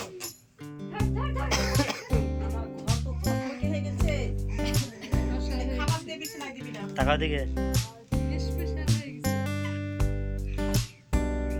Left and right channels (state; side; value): identical; both; correlation 1.00